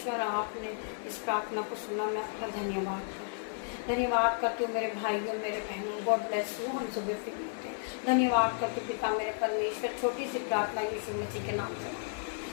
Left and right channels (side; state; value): right; silent; digital silence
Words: आपने इस प्रार्थना को सुना, मैं आपका धन्यवाद करती हूँ मेरे भाइयों मेरे बहनों। God bless you. हम सुबह फिर मिलते हैं। धन्यवाद करती हूँ पिता मेरे परमेश्वर। छोटी सी प्रार्थना यीशु मसीह के नाम से,